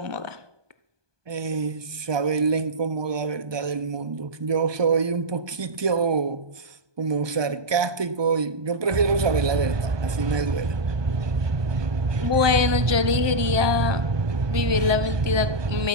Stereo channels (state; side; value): late; left; 1.2 ms